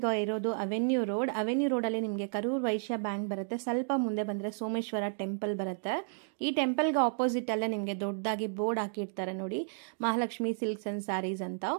ಇರೋದು ಅವೆನ್ಯೂ ರೋಡಲ್ಲಿ ನಿಮಗೆ ಕರೂರ್ ವೈಶ್ಯ ಬ್ಯಾಂಕ್ ಬರುತ್ತೆ. ಸ್ವಲ್ಪ ಮುಂದೆ ಬಂದರೆ ಸೋಮೇಶ್ವರ ಟೆಂಪಲ್ ಬರುತ್ತೆ. ಈ ಟೆಂಪಲ್ಗೆ ಆಪೋಸಿಟ್ ಅಲ್ಲೇ ನಿಮಗೆ ದೊಡ್ಡದಾಗಿ ಬೋರ್ಡ್ ಹಾಕಿರ್ತಾರೆ ನೋಡಿ, ಮಹಾಲಕ್ಷ್ಮಿ ಸಿಲ್ಕ್ಸ್ ಅಂಡ್ ಸ್ಯಾರೀಸ್ ಅಂತ.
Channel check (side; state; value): left; silent; digital silence